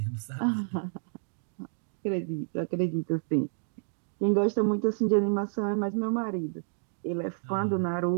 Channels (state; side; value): silent; left; digital silence